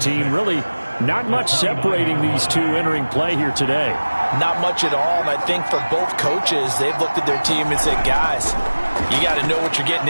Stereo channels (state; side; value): inverted; both; correlation -1.00